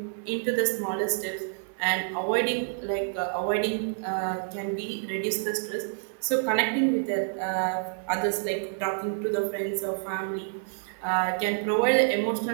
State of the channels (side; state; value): left; silent; 59 dB below the other